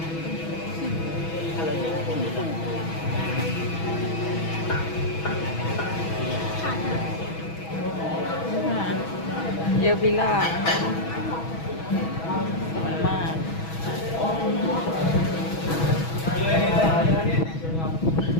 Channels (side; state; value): right; late; 6.2 ms